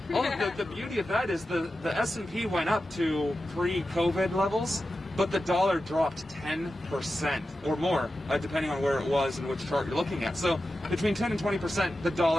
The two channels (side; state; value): both; normal; correlation 0.92